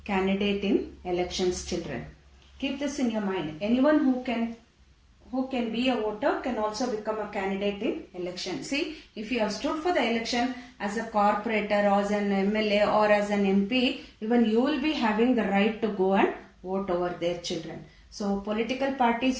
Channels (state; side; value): identical; both; correlation 1.00